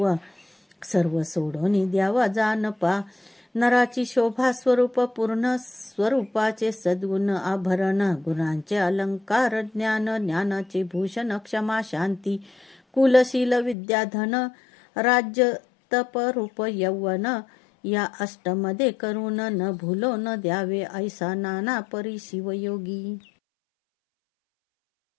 सर्व सोडून द्यावा जानपा. नराची शोभा स्वरूप पूर्ण, स्वरूपाचे सद्गुण आभरण. गुणांचे अलंकार ज्ञान, ज्ञानाचे भूषण क्षमा शांती. कुलशील विद्याधन, राज्य तप रूप यौवन. या अष्टमध्ये करून न भूलो न द्यावे, ऐसा नाना परी शिवयोगी.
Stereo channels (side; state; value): right; drops out; at 13.8 s